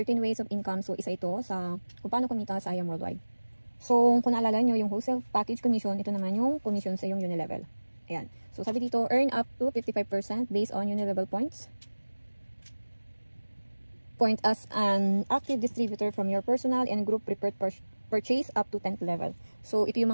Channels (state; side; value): inverted; both; correlation -1.00